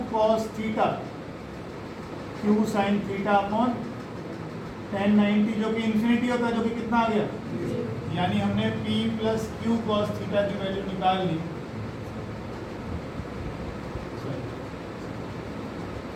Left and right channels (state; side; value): identical; both; correlation 1.00